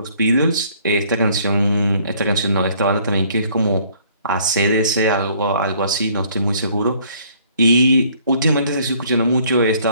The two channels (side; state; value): both; inverted; correlation -0.60